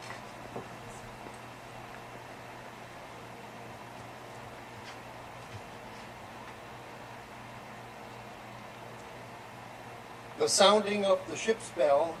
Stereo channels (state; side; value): identical; both; correlation 1.00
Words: The sounding of the ship's bell